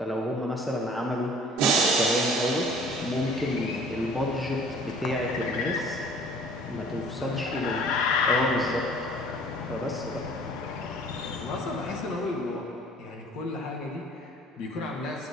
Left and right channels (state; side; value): normal; both; correlation 0.50